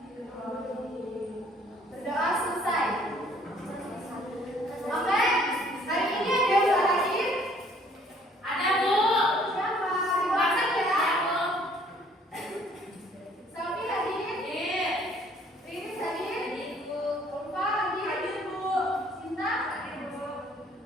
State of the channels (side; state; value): both; normal; correlation 0.59